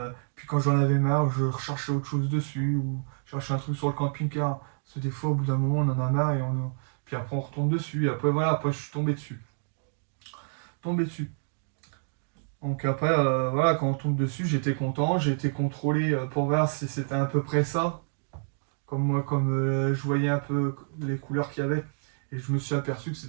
puis quand j'en avais marre, je recherchais autre chose dessus, ou je cherchais un truc sur le camping-car. Parce que des fois, au bout d'un moment, on en a marre, puis après, on retombe dessus, et après, voilà, après, je suis tombé dessus. Tombé dessus. Donc après, voilà, quand on tombe dessus, j'étais content, j'ai été contrôlé pour voir si c'était à peu près ça. Comme moi, comme je voyais un peu les couleurs qu'il y avait, et je me suis aperçu que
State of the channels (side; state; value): left; silent; digital silence